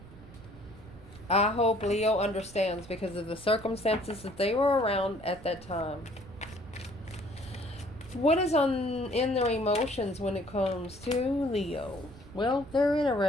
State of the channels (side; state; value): right; noise; rumble, 18 dB below the sound